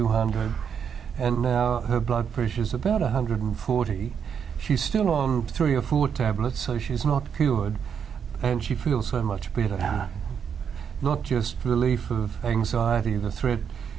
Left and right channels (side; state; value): left; quieter; 7.4 dB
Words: and now her blood pressure is about 140. She's still on 3 or 4 tablets, so she's not cured, and she feels so much better. Not just relief of anxiety, the threat